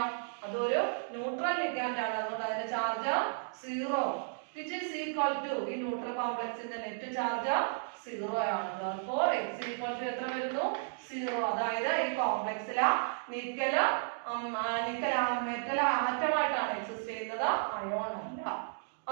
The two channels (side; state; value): left; silent; digital silence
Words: അതൊരു ന്യൂട്രൽ ലിഗാൻഡ് ആണ്. അതുകൊണ്ട് അതിന്റെ charge 0, which is equal to ഈ ന്യൂട്രൽ കോംപ്ലക്സിന്റെ നെറ്റ് ചാർജ് 0 ആണ്. Therefore X equal to എത്ര വരുന്നു? 0. അതായത് ഈ കോംപ്ലക്സിലെ നിക്കൽ മെറ്റൽ ആറ്റമായിട്ടാണ് എക്സിസ്റ്റ് ചെയ്യുന്നത്, അയോൺ അല്ല.